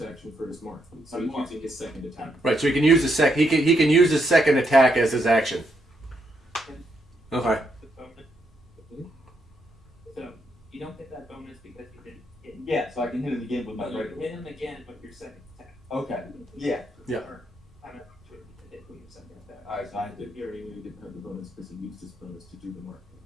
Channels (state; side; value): normal; both; correlation 0.78